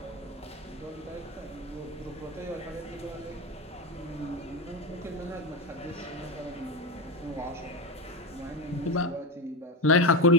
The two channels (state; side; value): normal; both; correlation 0.15